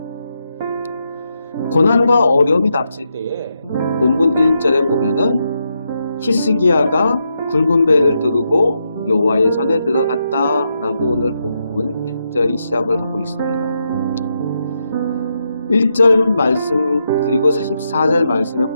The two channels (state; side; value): inverted; both; correlation -0.83